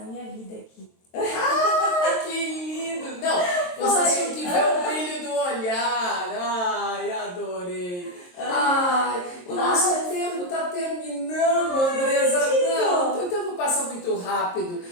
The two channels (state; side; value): late; right; 22 ms